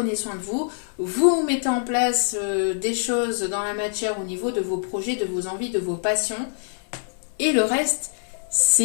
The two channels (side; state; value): right; silent; 62 dB below the other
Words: soin de vous, vous mettez en place des choses dans la matière au niveau de vos projets, de vos envies, de vos passions. Et le reste,